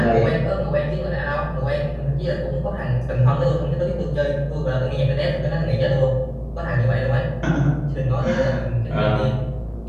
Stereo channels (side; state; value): both; identical; correlation 1.00